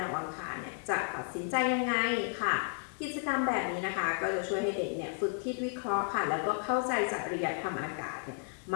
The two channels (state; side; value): silent; right; 56 dB below the other